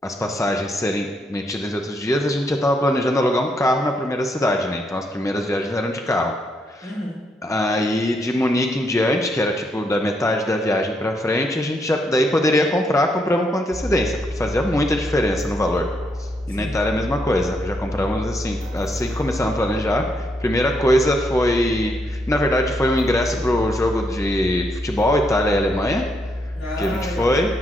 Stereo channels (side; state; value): both; normal; correlation 0.76